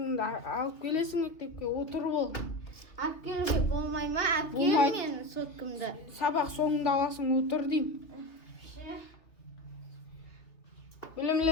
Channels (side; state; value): right; late; 2.9 ms